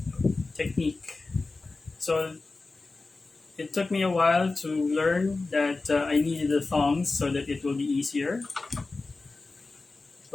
technique. So it took me a while to learn that I needed the thongs so that it will be easier.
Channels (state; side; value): quieter; right; 3.6 dB